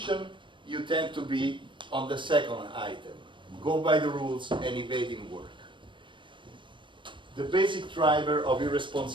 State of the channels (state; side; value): late; left; 0.24 ms